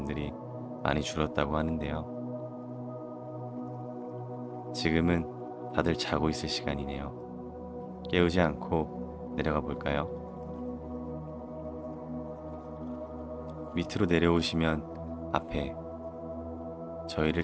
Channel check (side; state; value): both; identical; correlation 1.00